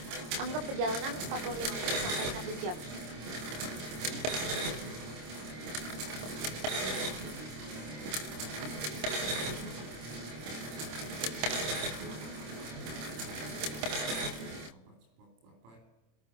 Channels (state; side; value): late; left; 26 ms